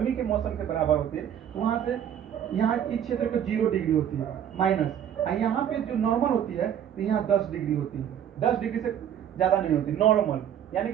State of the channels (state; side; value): quieter; left; 9.6 dB